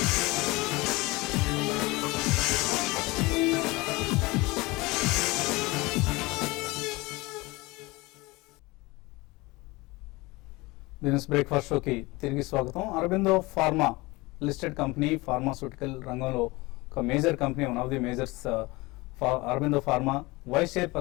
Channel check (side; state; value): right; quieter; 22.8 dB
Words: బిజినెస్ బ్రేక్ఫాస్ట్ షోకి తిరిగి స్వాగతం. Aurobindo pharma listed company, pharmaceutical రంగంలో ఒక major company, one of the majors Aurobindo pharma vice